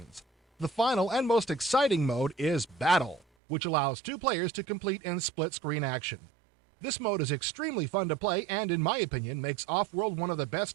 The final and most exciting mode is Battle, which allows 2 players to complete in split-screen action. This mode is extremely fun to play and, in my opinion, makes Off-World one of the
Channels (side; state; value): left; drops out; at 3.2 s